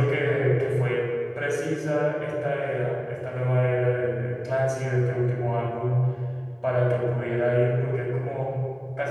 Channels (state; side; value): identical; both; correlation 1.00